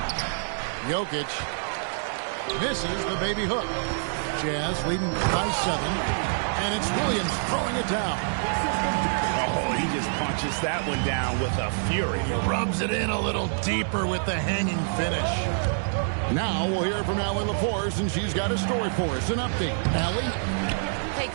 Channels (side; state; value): left; silent; digital silence